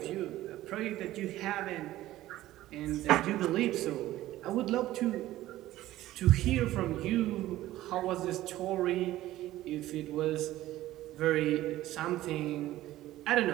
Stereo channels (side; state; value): left; quieter; 15.2 dB